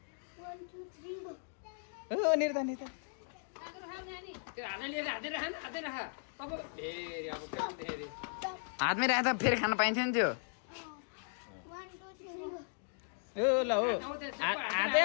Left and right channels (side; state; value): right; silent; digital silence